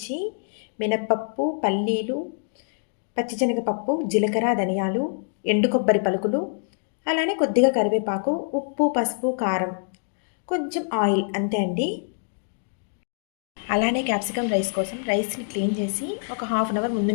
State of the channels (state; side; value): silent; right; digital silence